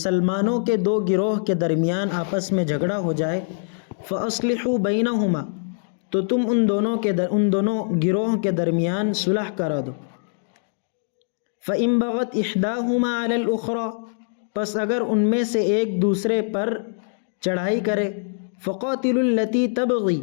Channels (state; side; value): silent; right; digital silence